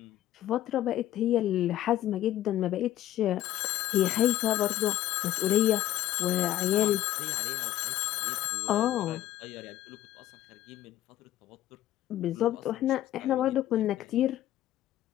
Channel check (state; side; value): quieter; right; 13.5 dB